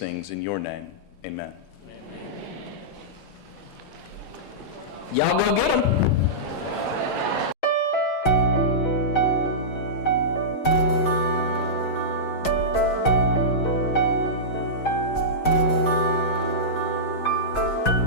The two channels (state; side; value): late; right; 5.6 ms